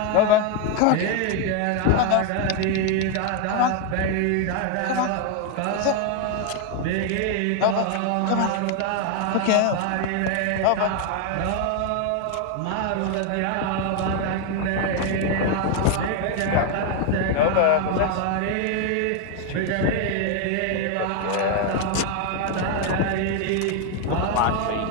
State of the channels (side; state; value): both; different; correlation 0.01